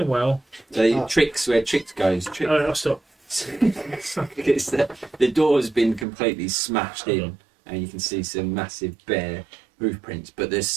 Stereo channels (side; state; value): left; drops out; at 6.1 s